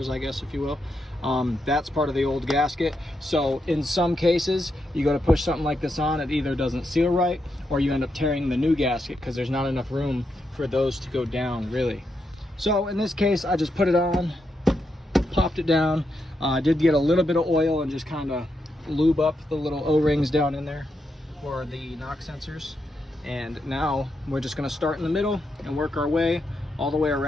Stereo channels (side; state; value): both; normal; correlation 0.83